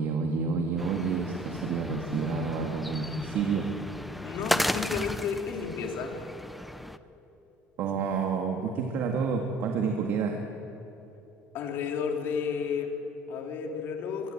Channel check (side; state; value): both; normal; correlation 0.52